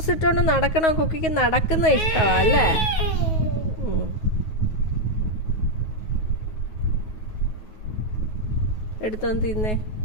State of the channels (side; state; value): right; late; 9.3 ms